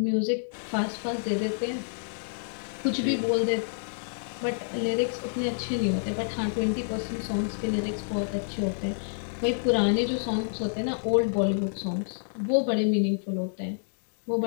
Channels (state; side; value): silent; right; digital silence